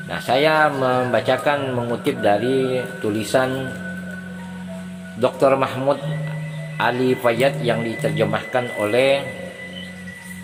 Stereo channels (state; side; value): identical; both; correlation 1.00